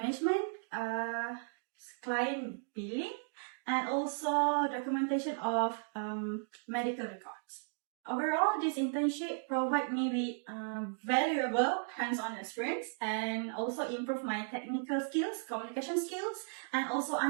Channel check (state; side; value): silent; left; digital silence